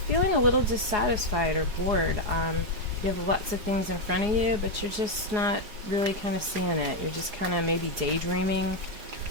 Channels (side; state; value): left; late; 4.8 ms